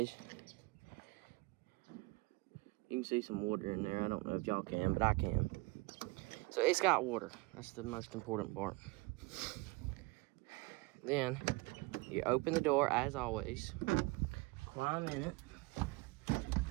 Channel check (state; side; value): quieter; left; 24.5 dB